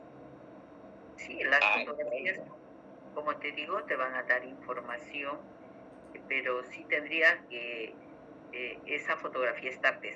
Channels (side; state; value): both; identical; correlation 1.00